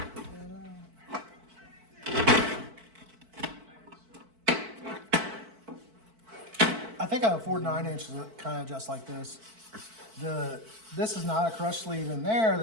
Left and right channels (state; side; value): late; left; 4.5 ms